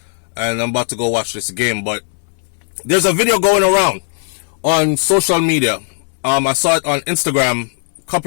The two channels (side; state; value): right; silent; 68 dB below the other